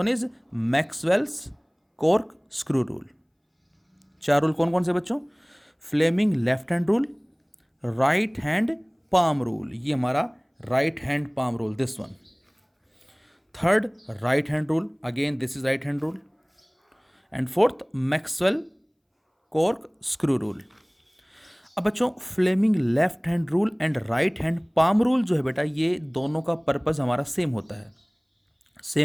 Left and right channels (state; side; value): identical; both; correlation 1.00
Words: is Maxwell's cork screw rule. 4 rule कौन कौन से बच्चों? Fleming left hand rule, right hand palm rule, ये हमारा right hand palm rule, this one. Third right hand rule, again this is right hand rule and fourth Maxwell cork screw rule. अब बच्चों Fleming left hand rule and right hand palm rule जो है बेटा, ये दोनों का purpose हमारा same होता है।